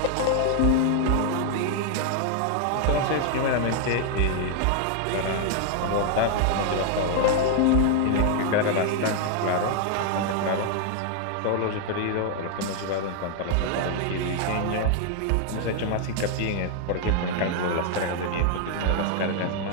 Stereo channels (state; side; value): different; both; correlation 0.00